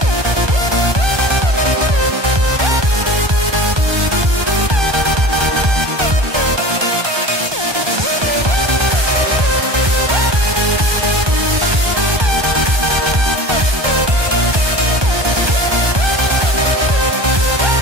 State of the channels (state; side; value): late; left; 1.2 ms